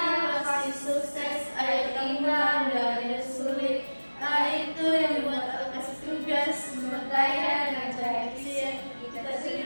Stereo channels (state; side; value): inverted; both; correlation -1.00